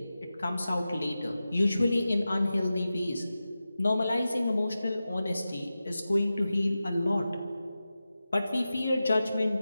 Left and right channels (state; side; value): inverted; both; correlation -0.93